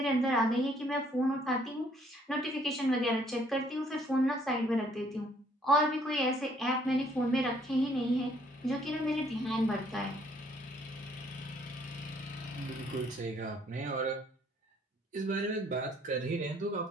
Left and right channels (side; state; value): both; normal; correlation 0.64